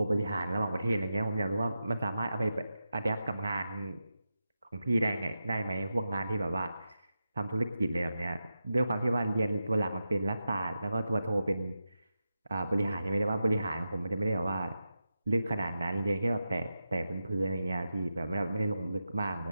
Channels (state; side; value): inverted; both; correlation -0.90